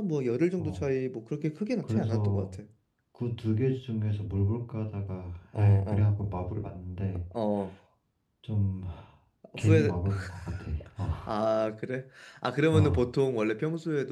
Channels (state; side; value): identical; both; correlation 1.00